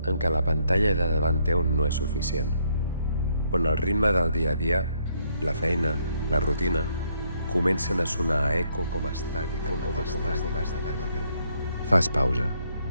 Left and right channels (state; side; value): inverted; both; correlation -0.72